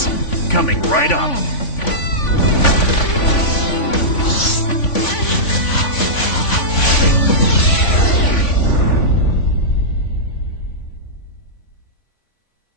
coming right up.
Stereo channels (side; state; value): right; late; 3.5 ms